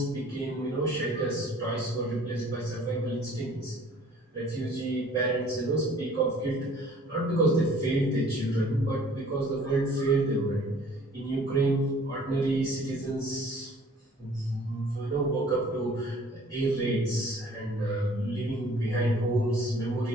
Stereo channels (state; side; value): normal; both; correlation 0.53